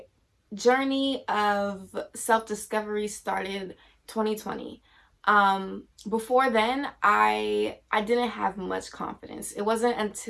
journey of self-discovery started 2020. Before then, I didn't have much confidence. It wasn't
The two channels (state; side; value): identical; both; correlation 1.00